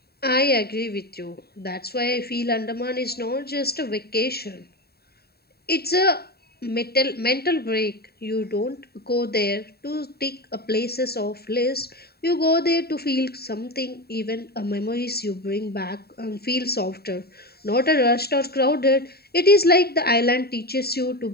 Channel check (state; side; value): late; right; 0.46 ms